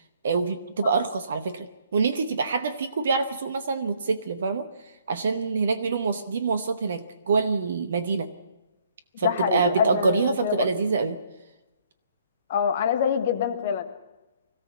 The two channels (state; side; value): inverted; both; correlation -0.64